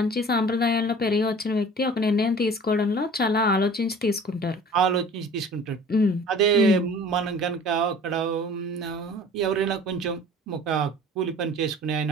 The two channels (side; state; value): both; normal; correlation 0.45